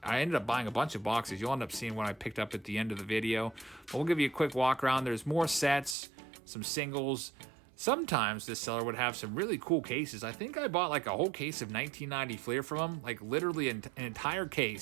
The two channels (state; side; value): drops out; left; at 6.0 s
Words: I ended up buying a bunch of boxes. You'll end up seeing what I picked up at the end of the video. But we'll give you a quick walk around. There's more sets, some singles. Sometimes this seller would have some really cool cases. I think I bought like a whole case of 1990 Fleer from him, like literally an entire